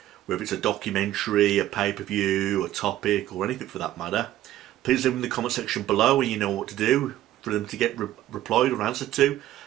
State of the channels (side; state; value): left; quieter; 13.7 dB